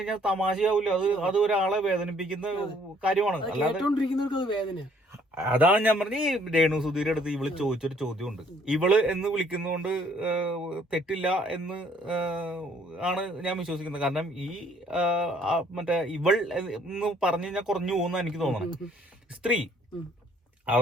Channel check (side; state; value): both; normal; correlation 0.62